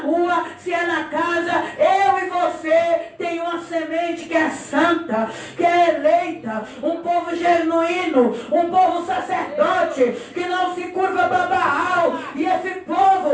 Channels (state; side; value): identical; both; correlation 1.00